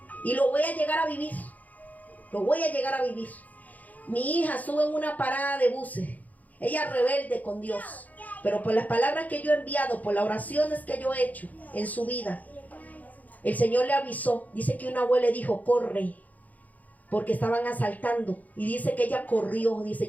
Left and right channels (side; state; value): right; late; 0.078 ms